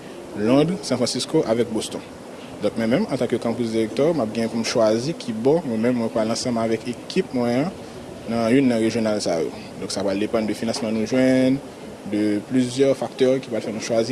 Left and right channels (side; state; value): both; identical; correlation 1.00